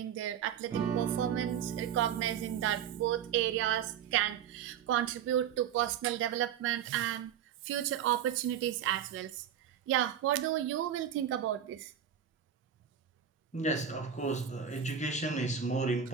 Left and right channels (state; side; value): quieter; left; 8.8 dB